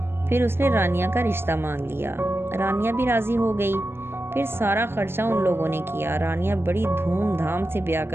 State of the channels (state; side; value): late; left; 0.11 ms